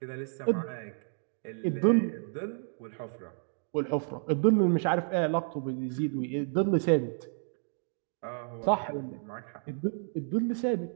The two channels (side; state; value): left; silent; digital silence